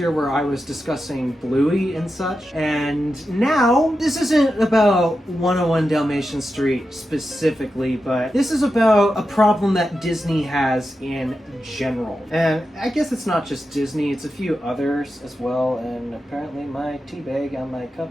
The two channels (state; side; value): normal; both; correlation 0.90